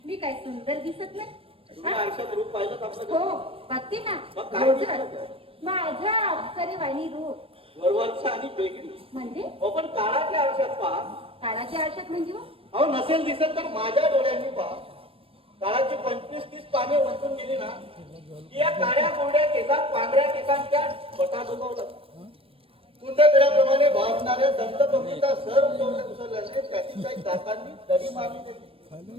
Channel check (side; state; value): left; late; 0.27 ms